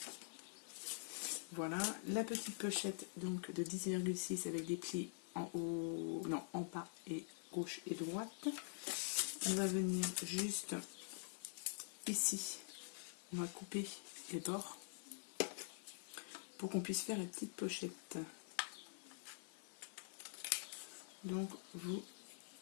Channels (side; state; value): right; silent; digital silence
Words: Voilà, la petite pochette donc de 10,6 avec des plis en haut, non, en bas et gauche et droite. On va venir juste ici, on va couper les bords pour qu'on puisse faire la petite pochette. Donc vous